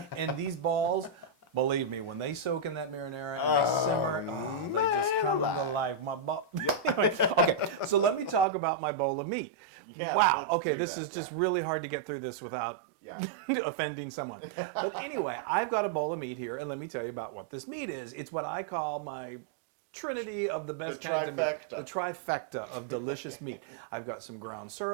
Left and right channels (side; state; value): left; drops out; at 8.5 s